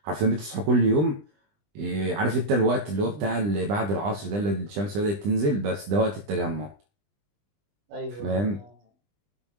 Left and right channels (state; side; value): late; left; 20 ms